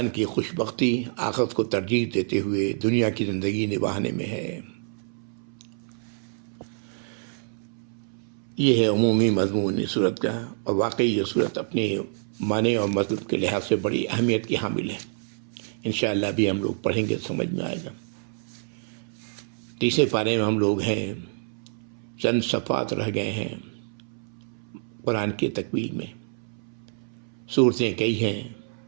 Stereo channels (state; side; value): silent; left; 60 dB below the other